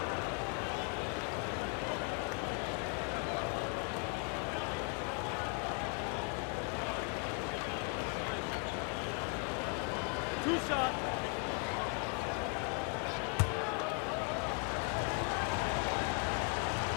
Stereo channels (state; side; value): quieter; right; 36.4 dB